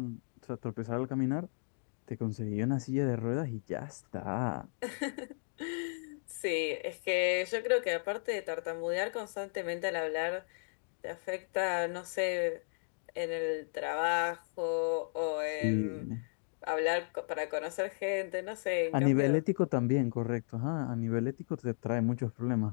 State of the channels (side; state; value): right; silent; digital silence